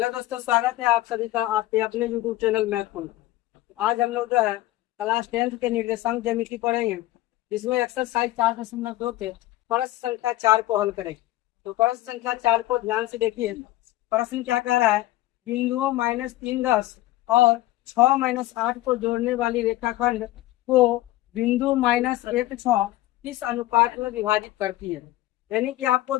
दोस्तों, स्वागत है आप सभी का आपके अपने यूट्यूब चैनल मैथ फन। आज हम लोग जो है क्लास 10th के निर्देशांक ज्यामिति पढ़ेंगे, जिसमें एक्सरसाइज 4.2 के प्रश्न संख्या 4 को हल करेंगे। तो प्रश्न संख्या 4 को ध्यान से देखिए। प्रश्न क्या कह रहा है? बिंदुओं -3 10 और 6-8 को जोड़ने वाली रेखाखंड को बिंदु -1 6 किस अनुपात में विभाजित करती है। यानी कि आपको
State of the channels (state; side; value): quieter; right; 16.5 dB